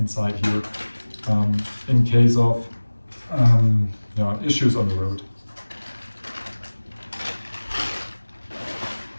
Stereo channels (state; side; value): inverted; both; correlation -1.00